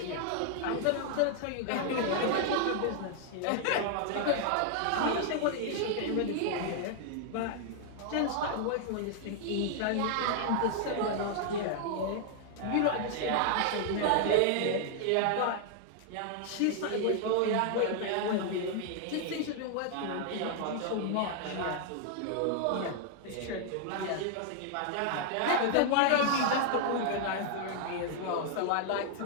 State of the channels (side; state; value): both; different; correlation 0.00